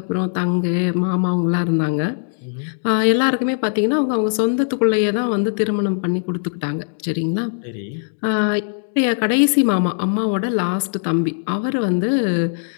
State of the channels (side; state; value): right; silent; digital silence